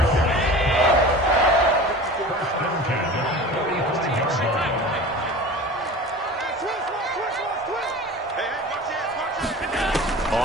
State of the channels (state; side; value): normal; both; correlation 0.37